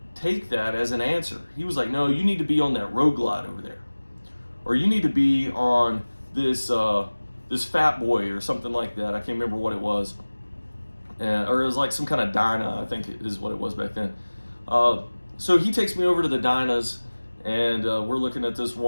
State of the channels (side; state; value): both; inverted; correlation -1.00